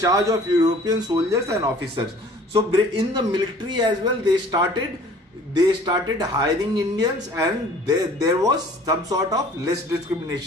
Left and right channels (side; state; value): both; normal; correlation 0.51